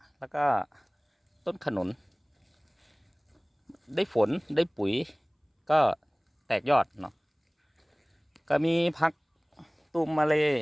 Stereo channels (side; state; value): both; identical; correlation 1.00